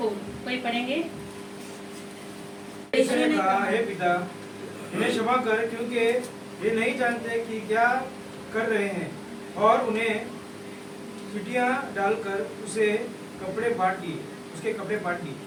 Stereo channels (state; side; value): identical; both; correlation 1.00